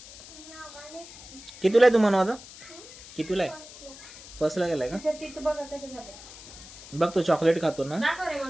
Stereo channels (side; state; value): left; noise; hiss, 17 dB below the sound